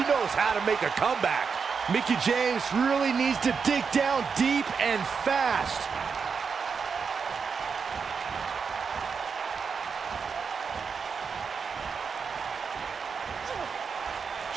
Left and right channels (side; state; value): left; quieter; 5.7 dB